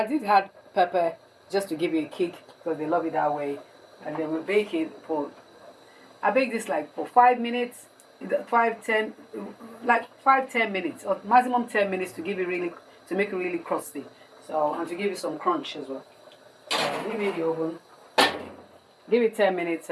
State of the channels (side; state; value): both; identical; correlation 1.00